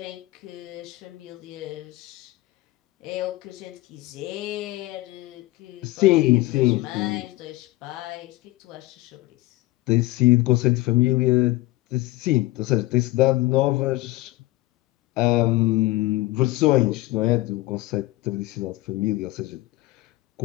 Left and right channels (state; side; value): quieter; right; 18.8 dB